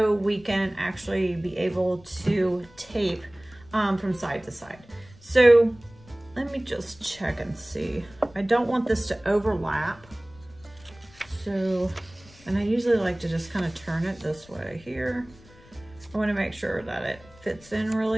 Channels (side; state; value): left; noise; rumble, 24 dB below the sound